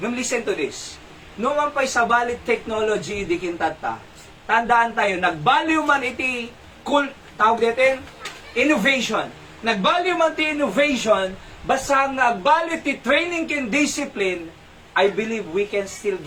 to this. Numan pa'y sa bali technology di kintata, tandaan tayo, nag-value man iti tawag natin, innovation. Nag-value man ti innovation, basta nag-value ti training kin discipline, I believe we can still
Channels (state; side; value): identical; both; correlation 1.00